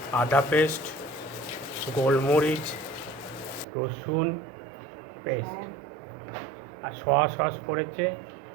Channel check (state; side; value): drops out; left; at 3.7 s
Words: আদা পেস্ট, গোলমরিচ, রসুন পেস্ট, আর সোয়া সস পড়েছে।